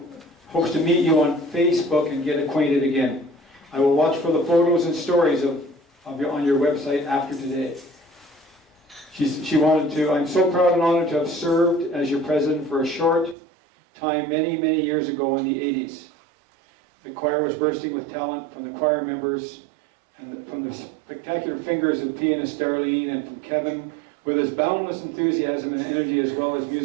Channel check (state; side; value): drops out; left; at 13.4 s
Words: hopes to meet you on Facebook and get acquainted again. I will watch for the photos and stories on your website after today. She wanted to... I'm so proud and honored to have served as your president for a short time many, many years ago in the 80s. The choir was bursting with talent from the choir members and from the spectacular fingers of pianist Darlene and from Kevin with his boundless enthusiasm and energy as well as